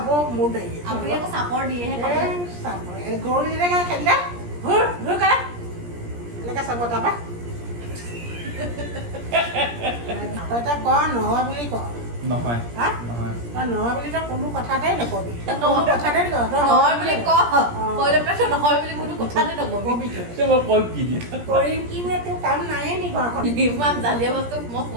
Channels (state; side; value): late; left; 17 ms